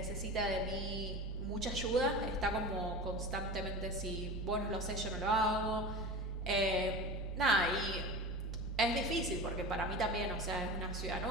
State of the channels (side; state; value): left; noise; rumble, 10 dB below the sound